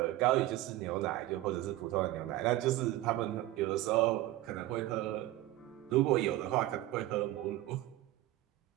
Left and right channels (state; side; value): quieter; left; 15.8 dB